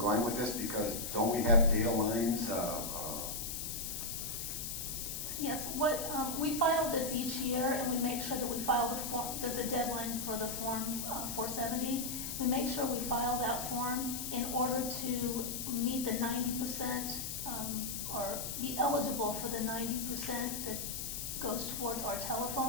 with this? Because don't we have data lines? Yes, we file this each year, and we make sure that we file the form. There's a deadline for the Form 470. We make sure we file that form in order to meet the 90% or be eligible for the 90% that goes towards our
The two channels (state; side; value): noise; left; hiss, 4 dB below the sound